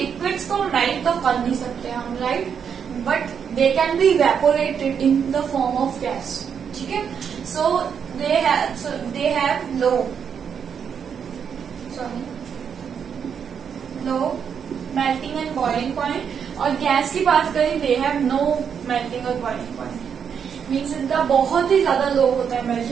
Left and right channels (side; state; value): left; quieter; 7.3 dB